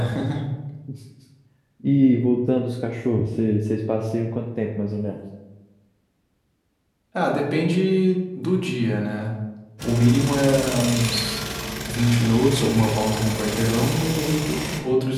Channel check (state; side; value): identical; both; correlation 1.00